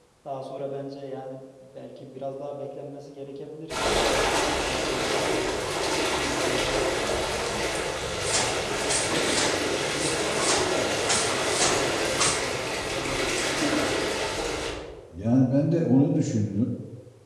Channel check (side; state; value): both; identical; correlation 1.00